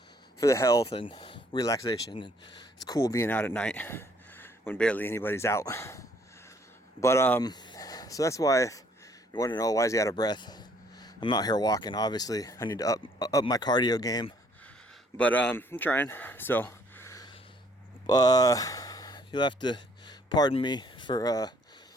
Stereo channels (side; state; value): both; normal; correlation 0.63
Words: for the health and relaxation. And it's cool being out at night when barely anybody's out. But so that's why, if you want to know why is he out of breath, I'm out here walking. Obviously, I need to up my cardio game, but I'm trying. So you'll have to pardon me for